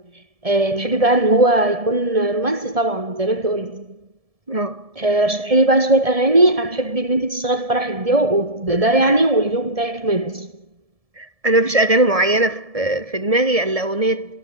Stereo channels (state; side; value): late; left; 1.7 ms